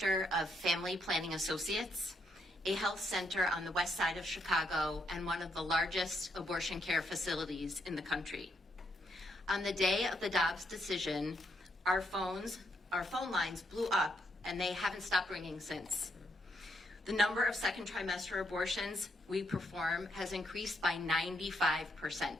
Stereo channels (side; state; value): both; normal; correlation 0.77